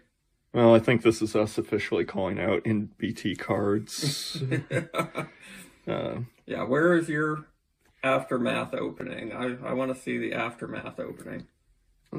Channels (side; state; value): both; identical; correlation 1.00